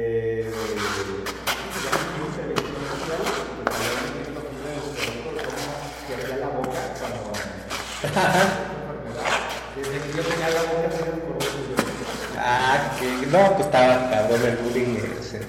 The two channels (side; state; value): both; identical; correlation 1.00